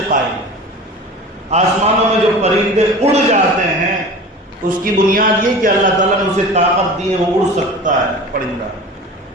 قائم ہے۔ آسمانوں میں جو پرندے اڑ جاتے ہیں اس کی بنیاد یہ کہ اللہ تعالیٰ نے اسے طاقت دی ہے، وہ اڑ سکتا ہے پرندہ۔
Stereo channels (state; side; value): normal; both; correlation 0.37